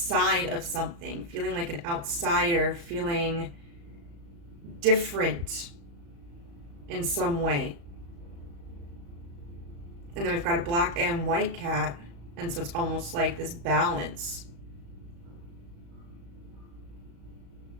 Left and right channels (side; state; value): left; late; 35 ms